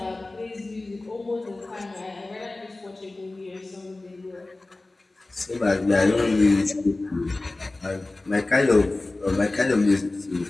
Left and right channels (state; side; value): quieter; right; 3.0 dB